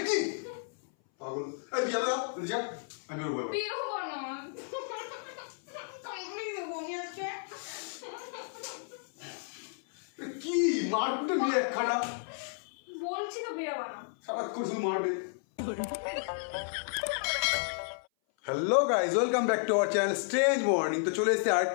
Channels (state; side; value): silent; right; 56 dB below the other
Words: কি পাগল, এই বিয়া দাও যা, আমি বেরোবো। বের হবো না, কামড়ে দেবো আমি আজকে। কি মারপিটে নিয়ে একখানা, বলছি তো বেরোবা না, সারাক্ষণ শুধু মারবে। Hello guys, welcome back to our channel strange morning. তো চলে এসেছি